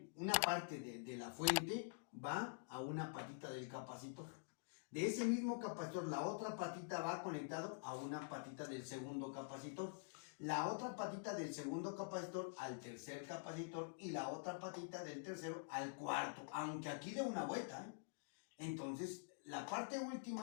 una parte de la fuente, va a una patita del capacitor. De ese mismo capacitor, la otra patita va conectado a una patita del segundo capacitor. La otra patita del segundo capacitor al tercer capacitor y la otra patita del tercero al cuarto, aunque aquí dé una vuelta, ¿eh? Entonces, la parte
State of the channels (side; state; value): right; silent; digital silence